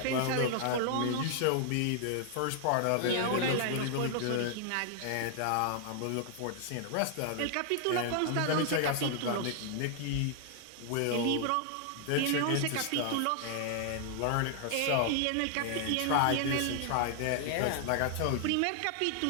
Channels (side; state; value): both; different; correlation 0.00